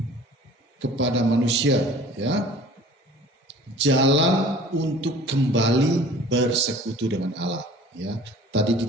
kepada manusia, ya, jalan untuk kembali bersekutu dengan Allah, ya. Tadi di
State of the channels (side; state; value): both; normal; correlation 0.47